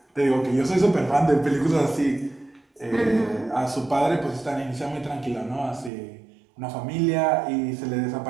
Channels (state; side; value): drops out; left; at 5.9 s